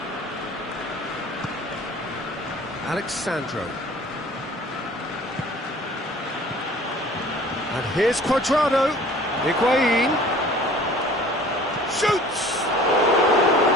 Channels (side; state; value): both; normal; correlation 0.49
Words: Alexandro. And here's Cuadrado. Higuain. Shoots!